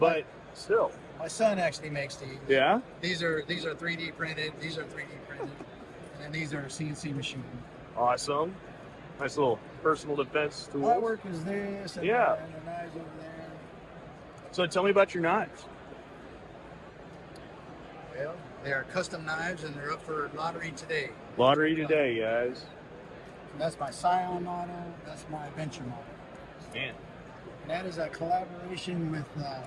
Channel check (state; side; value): identical; both; correlation 1.00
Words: still. My son actually makes these. Yeah? These are 3D printed. These are 3D printed, and then these are CNC machined. Awesome. Nice little personal defense tool. Artwork is this, and Yeah. and the knives over there. So tell me about your knives. Well, they are custom knives, and they're up for lottery today. Lottery today, guys. That's my Scion model. That's my Adventure model. Man. And that is a collaboration with